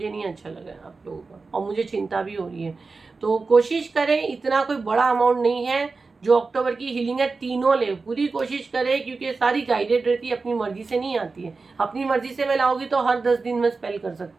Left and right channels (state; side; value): quieter; left; 4.1 dB